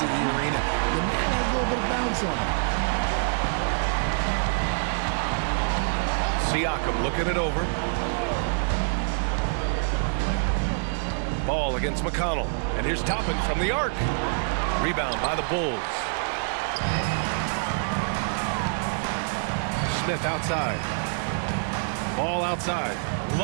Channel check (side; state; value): left; silent; 61 dB below the other